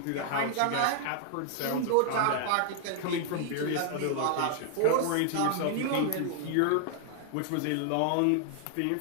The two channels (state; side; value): different; both; correlation 0.00